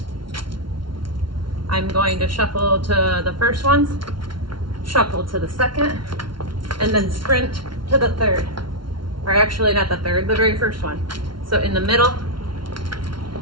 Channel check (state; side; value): late; left; 0.73 ms